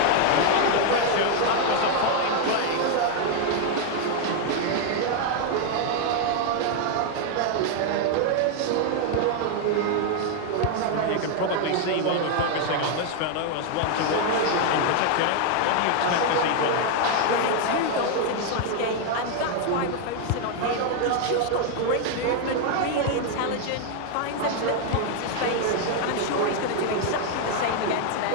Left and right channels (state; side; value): different; both; correlation 0.00